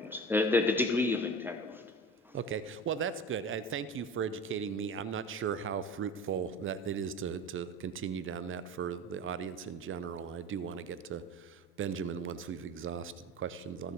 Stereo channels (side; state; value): both; normal; correlation 0.34